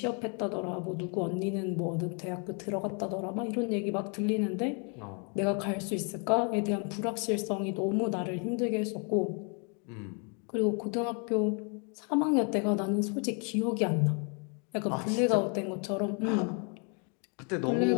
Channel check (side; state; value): right; quieter; 37.0 dB